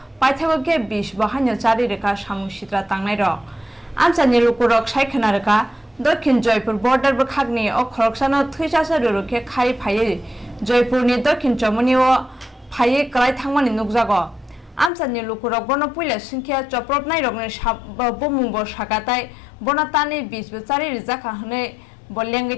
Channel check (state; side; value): drops out; right; at 14.9 s